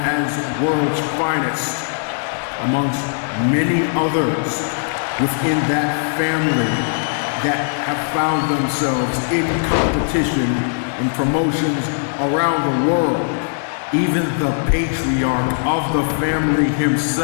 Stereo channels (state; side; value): silent; right; digital silence